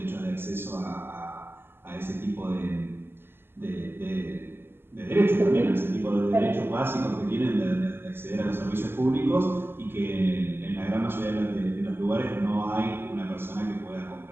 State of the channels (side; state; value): left; late; 0.11 ms